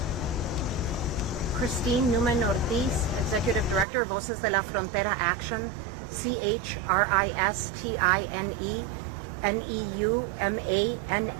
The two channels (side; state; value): left; drops out; at 3.9 s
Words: Christine Newman Ortiz, Executive Director of Voces de la Frontera Action,